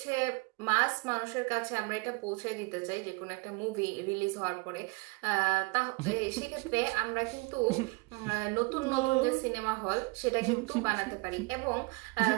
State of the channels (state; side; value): quieter; left; 28.0 dB